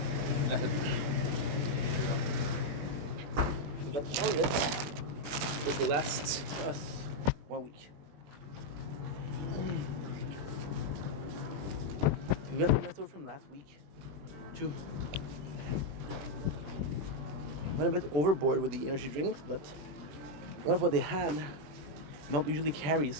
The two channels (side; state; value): left; late; 21 ms